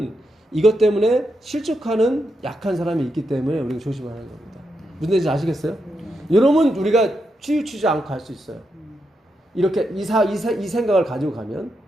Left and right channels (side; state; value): both; normal; correlation 0.84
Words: 이것 때문에 실족하는 약한 사람이 있기 때문에 우리가 조심하는 겁니다. 무슨 뜻인지 아시겠어요? 여러분 우리가 치우치지 않고 할 수 있어요. 이렇게 이 생각을 가지고 가면.